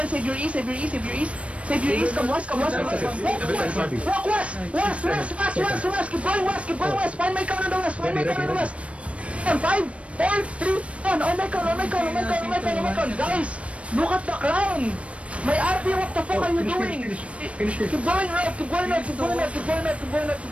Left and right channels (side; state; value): left; late; 0.062 ms